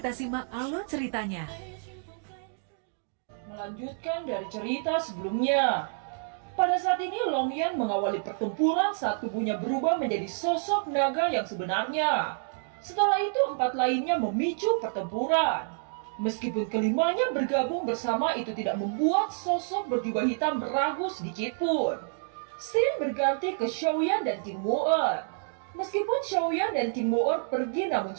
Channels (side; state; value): left; silent; digital silence